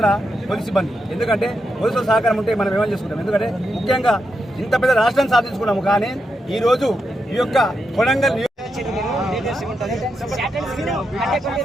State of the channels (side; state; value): both; normal; correlation 0.85